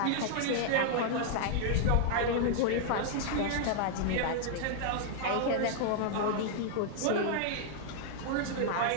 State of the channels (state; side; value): different; both; correlation 0.00